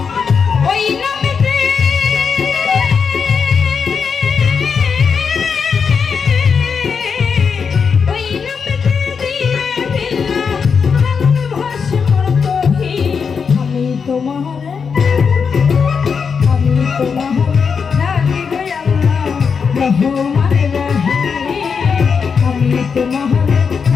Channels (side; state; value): right; quieter; 6.0 dB